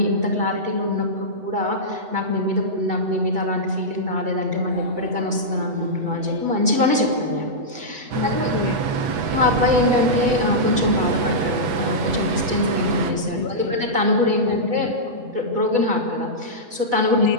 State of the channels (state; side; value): late; left; 8.1 ms